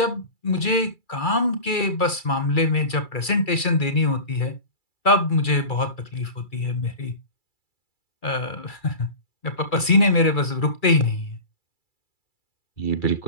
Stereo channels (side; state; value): right; late; 2.3 ms